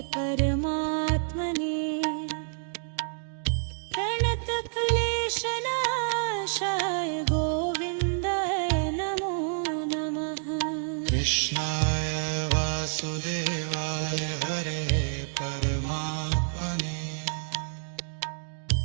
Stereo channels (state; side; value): silent; left; digital silence